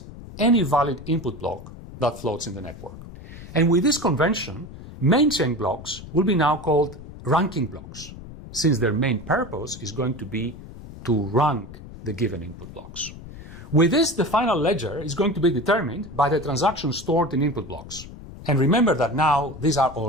any valid input block that floats in the network. And with this convention, main chain blocks will be now called ranking blocks, since their main purpose is going to be to rank the given input blocks. With this, the final ledger is going to be determined by the transactions stored in input blocks. And remember that now these are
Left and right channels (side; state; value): left; noise; rumble, 15 dB below the sound